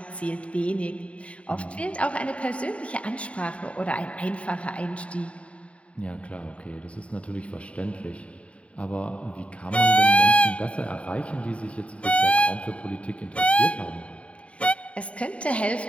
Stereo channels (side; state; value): right; late; 0.063 ms